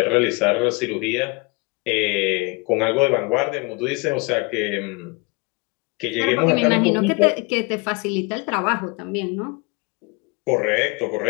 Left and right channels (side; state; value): right; quieter; 28.1 dB